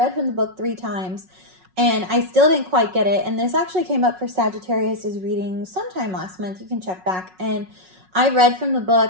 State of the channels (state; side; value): late; left; 5.4 ms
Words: from the book 3 times. And I still didn't quite get it. And this actually came up for Sagittarius's reading sometime last month. You can check back. And I read from the